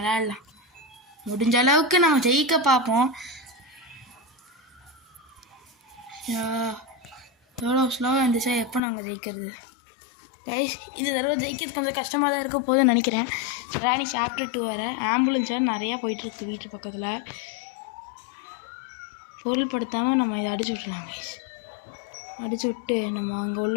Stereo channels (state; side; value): drops out; right; at 8.8 s